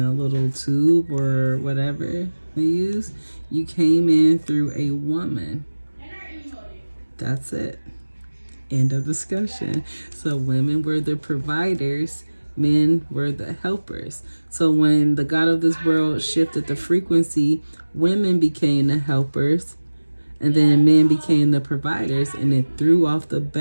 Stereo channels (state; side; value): inverted; both; correlation -1.00